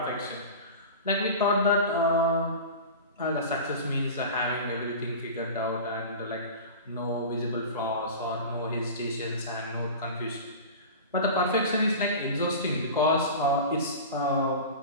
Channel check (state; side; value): inverted; both; correlation -0.32